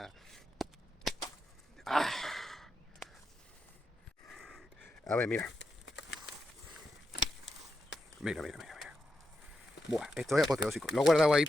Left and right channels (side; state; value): both; normal; correlation 0.86